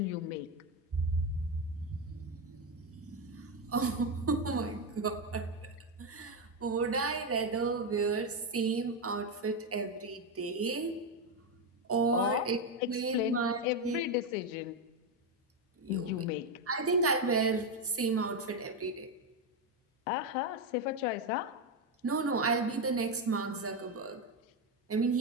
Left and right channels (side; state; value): both; normal; correlation 0.08